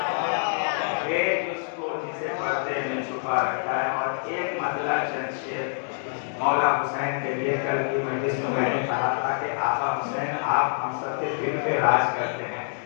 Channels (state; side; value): silent; right; digital silence